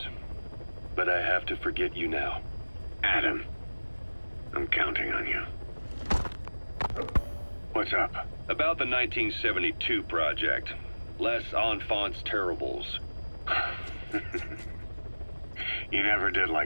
but I have to forget you now. Adam, I'm counting on you. What's up? About the 1972 project. Les Enfants Terribles. You never did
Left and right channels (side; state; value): both; inverted; correlation -1.00